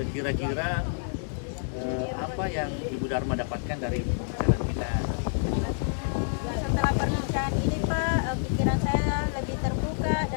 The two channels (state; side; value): silent; right; digital silence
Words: kira-kira apa yang Ibu Dharma dapatkan dari pembicaraan kita? Setelah perbincangan ini Pak, pikiran saya lebih terbuka